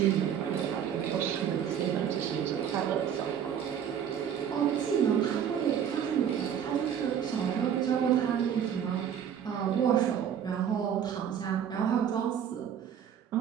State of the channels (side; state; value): left; quieter; 8.7 dB